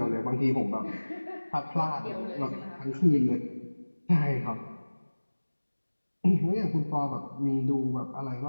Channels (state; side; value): inverted; both; correlation -1.00